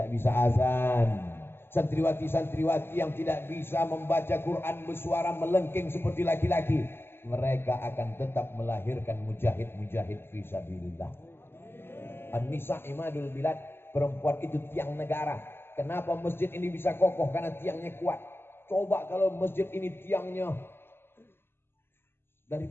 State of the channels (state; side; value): late; right; 0.11 ms